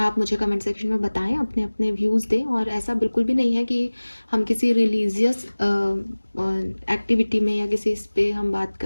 मुझे कमेंट सेक्शन में बताएं, अपने अपने व्यूज़ दें। और ऐसा बिल्कुल भी नहीं है कि हम किसी रिलीजियस एक्टिविटी में या किसी इस पे हम बात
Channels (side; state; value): both; inverted; correlation -1.00